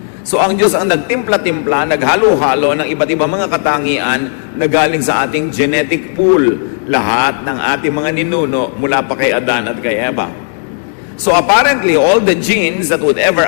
So ang Diyos ang nagtimpla-timpla, naghalo-halo ng iba't ibang mga katangian na galing sa ating genetic pool, lahat ng ating mga ninuno mula pa kay Adan at kay Eva. So apparently, all the genes that would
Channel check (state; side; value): silent; right; digital silence